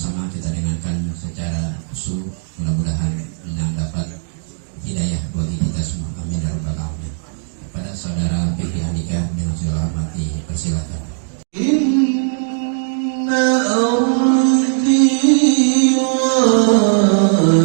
kita dengarkan secara khusyuk, mudah-mudahan yang dapat hidayah bagi kita semua, amin ya rabbal alamin. Pada saudara Fikri Andika dengan segala hormati, persilakan. Inna ardi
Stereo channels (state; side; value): silent; left; digital silence